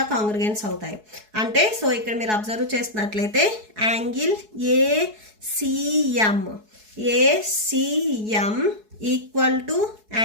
కాంగ్రిగెన్స్ అవుతాయి. అంటే సో ఇక్కడ మీరు అబ్జర్వ్ చేసినట్లయితే angle ACM equal to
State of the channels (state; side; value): late; left; 4.7 ms